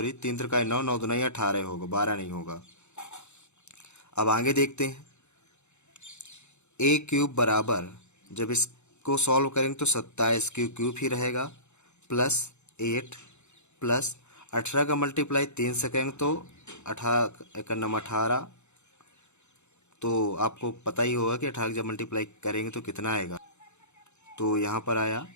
त्रिकाई 9, 9 दुनाई 18 होगा, 12 नहीं होगा। अब आगे देखते हैं, a क्यूब बराबर जब इसको सॉल्व करेंगे तो 27 क्यूब ही रहेगा प्लस 8 प्लस 18 का मल्टीप्लाई 3 से करेंगे तो 18, तो आपको पता ही होगा कि 18 जब मल्टीप्लाई करेंगे तो कितना आएगा। तो यहाँ पर आया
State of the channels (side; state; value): right; late; 0.83 ms